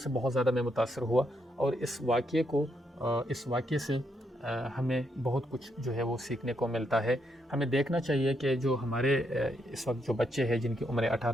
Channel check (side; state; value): both; normal; correlation 0.78